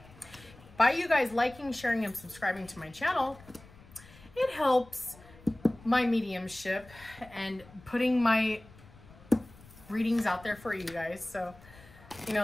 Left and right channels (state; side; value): noise; left; rumble, 22 dB below the sound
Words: By you guys liking, sharing, and subscribing to my channel, it helps my mediumship and putting my readings out there for you guys. So, you